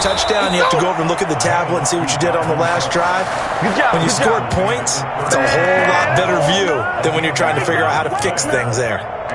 touchdown, you have to go over and look at the tablet and see what you did on the last drive. When you scored points, it's a whole lot better view than when you're trying to figure out how to fix things there.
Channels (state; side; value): identical; both; correlation 1.00